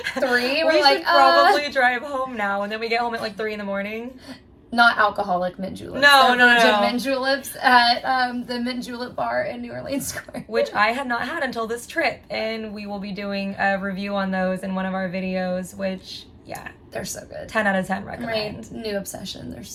3. We should probably drive home now. And then we get home at like 3 in the morning. Not alcoholic mint juleps. No. Mint juleps at the Mint Julep Bar in New Orleans Square. Which I had not had until this trip. And we will be doing a review on those in one of our videos, which, yeah. They're so good. 10 out of 10 recommend. My new obsession. They're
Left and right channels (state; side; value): identical; both; correlation 1.00